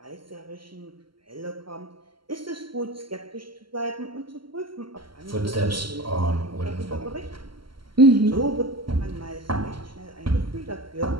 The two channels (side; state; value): left; late; 0.74 ms